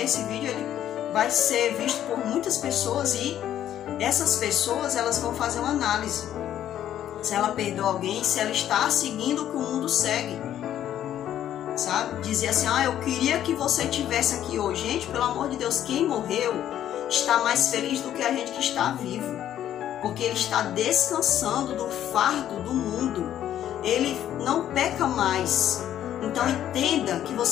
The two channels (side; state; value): right; quieter; 11.2 dB